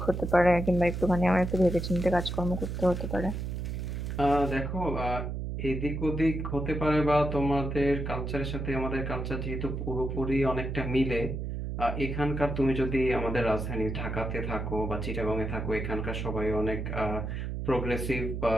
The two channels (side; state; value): right; noise; hum, 4 dB below the sound